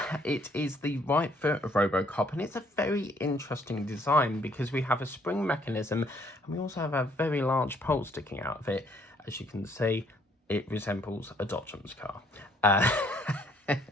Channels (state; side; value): normal; both; correlation 0.65